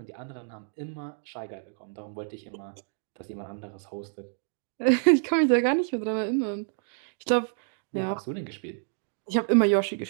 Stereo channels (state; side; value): silent; left; digital silence